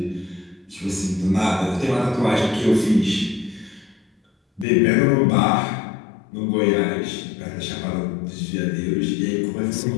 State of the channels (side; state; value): right; drops out; at 4.7 s